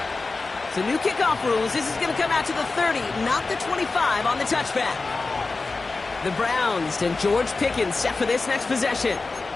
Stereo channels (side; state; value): right; quieter; 3.8 dB